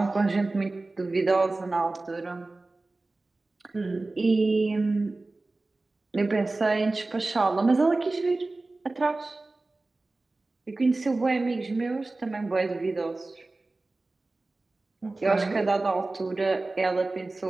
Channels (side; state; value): left; quieter; 3.2 dB